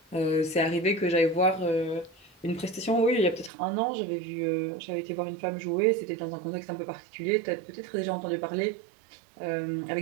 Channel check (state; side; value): drops out; left; at 3.5 s